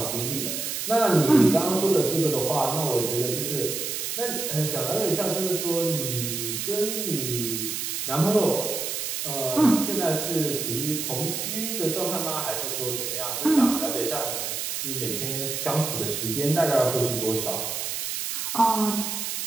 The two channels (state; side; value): noise; right; hiss, 3 dB below the sound